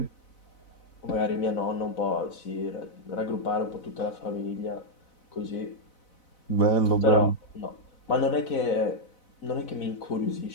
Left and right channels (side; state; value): right; late; 4.0 ms